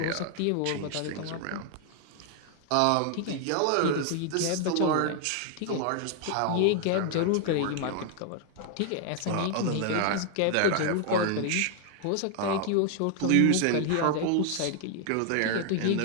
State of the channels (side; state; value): both; different; correlation 0.00